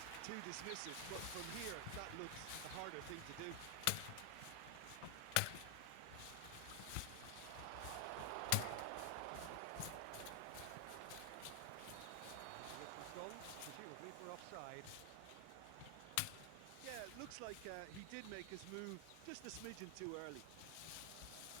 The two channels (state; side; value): different; both; correlation 0.00